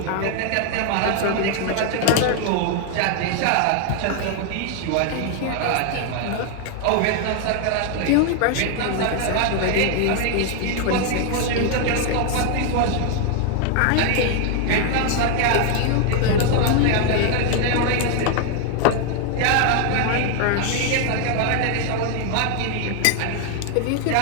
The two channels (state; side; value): different; both; correlation 0.00